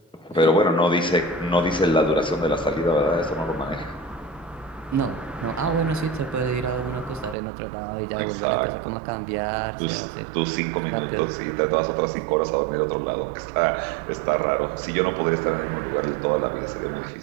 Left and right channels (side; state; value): left; drops out; at 7.4 s